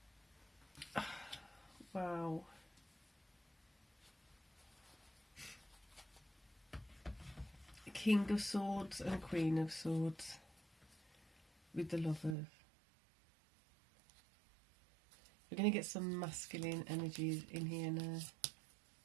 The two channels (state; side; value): drops out; left; at 12.4 s